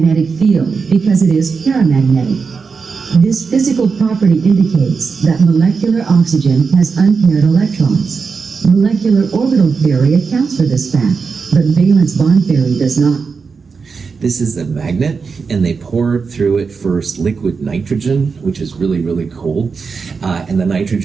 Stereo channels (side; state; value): left; quieter; 5.1 dB